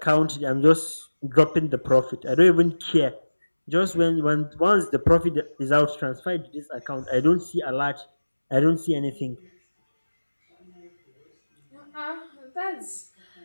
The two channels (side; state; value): both; inverted; correlation -1.00